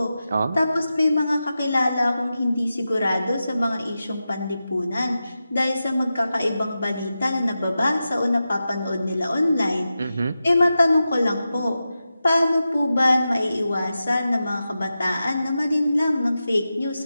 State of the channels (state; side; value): inverted; both; correlation -0.92